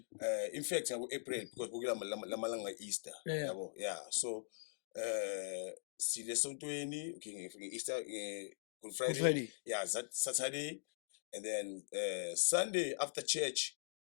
in fact ngabo April, because bukela lamalanga Easter, Yeah. yabo. Yeah. So sile sontweni, okay, nge-Easter, Good Friday, yeah, Saturday, and then Sunday after church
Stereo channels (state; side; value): silent; right; digital silence